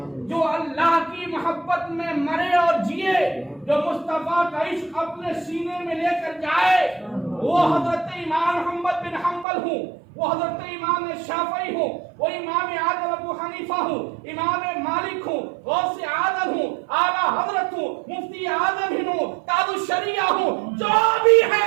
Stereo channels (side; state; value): left; drops out; at 9.5 s